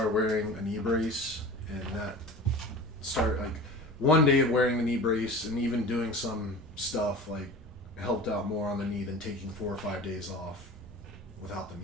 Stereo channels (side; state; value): both; normal; correlation 0.36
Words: wearing a knee brace, and that started, like, one day of wearing the knee brace and even doing some stuff, like, helped out more on the knee than taking 4 or 5 days off without the